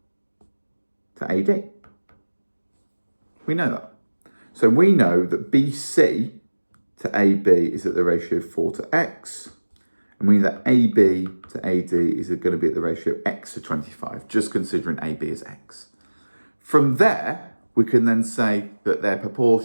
to AD. We know that. So we know that BC to AB is at the ratio 4 to X, and we know that AB to AD is going to be at the ratio X to 25, just considering AB as X. From there, we can then say that their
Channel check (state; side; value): inverted; both; correlation -1.00